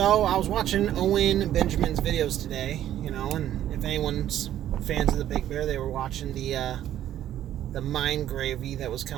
I was watching Owen Benjamin's videos today, and if anyone's fans of the Big Bear, they were watching the mind gravy that was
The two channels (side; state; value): left; quieter; 11.8 dB